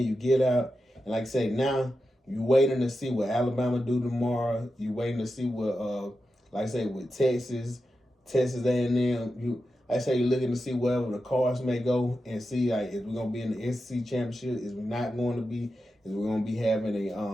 you get out. And like I say, now you waiting to see what Alabama do tomorrow. You waiting to see what, like I say, with Texas A&M. Like I say, you're looking to see wherever the Cards may go and see like if we're gonna be in the SEC championship, is we not going to be, is we're gonna be having a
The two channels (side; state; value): both; normal; correlation 0.90